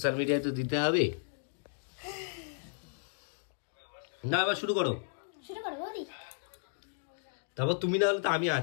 মিডিয়ায় তো দিতে হবে না। এবার শুরু করো। শুরু করো বৌদি। তারপর তুমি না হলে তো আমি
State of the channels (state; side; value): silent; right; digital silence